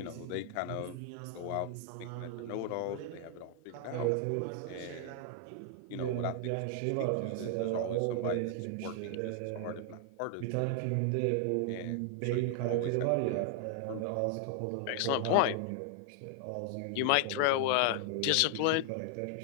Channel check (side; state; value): both; different; correlation 0.00